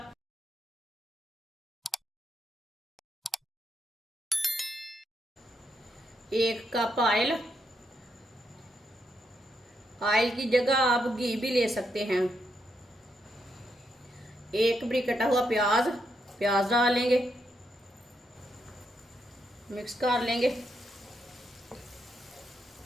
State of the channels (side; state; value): both; normal; correlation 0.80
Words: एक कप ऑयल, ऑयल की जगह आप घी भी ले सकते हैं। एक बड़ी कटा हुआ प्याज, प्याज डालेंगे, मिक्स कर लेंगे।